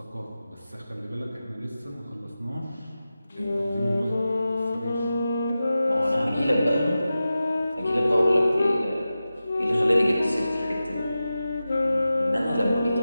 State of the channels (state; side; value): inverted; both; correlation -0.94